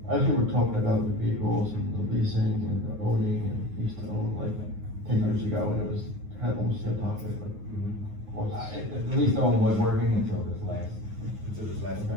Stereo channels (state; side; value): late; left; 9.5 ms